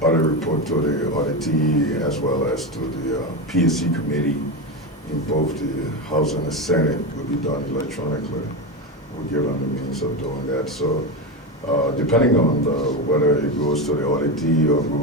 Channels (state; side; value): normal; both; correlation 0.16